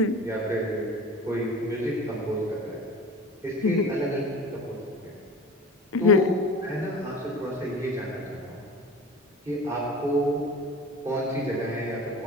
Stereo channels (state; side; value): normal; both; correlation 0.37